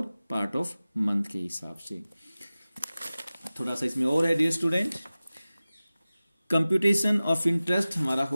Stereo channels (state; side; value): inverted; both; correlation -0.97